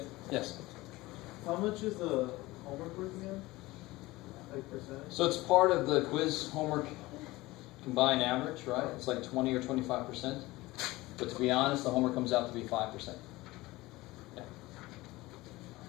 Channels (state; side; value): quieter; right; 19.7 dB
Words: Yes. How much is the homework worth again? Like percentage? So it's part of the quiz homework combined average, right? It's like 20 or 25%. But to be honest, the homework comes out to be 5%. Yeah.